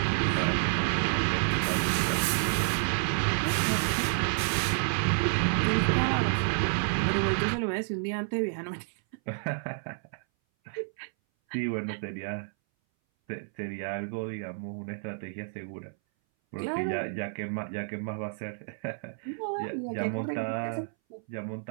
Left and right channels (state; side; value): silent; left; 58 dB below the other